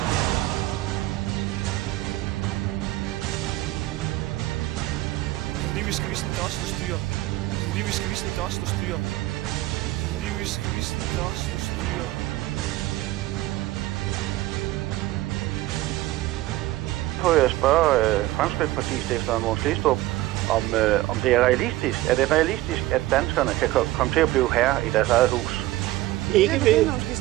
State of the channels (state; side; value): quieter; left; 17.1 dB